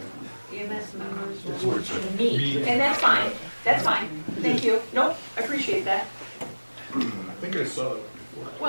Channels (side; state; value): both; inverted; correlation -1.00